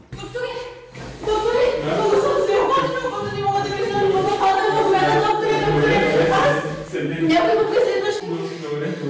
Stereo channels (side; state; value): both; identical; correlation 1.00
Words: Някой ме преследваш. Добре,